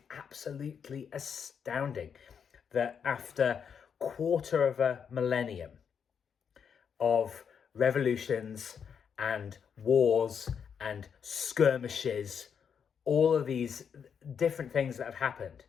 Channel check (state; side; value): quieter; right; 7.1 dB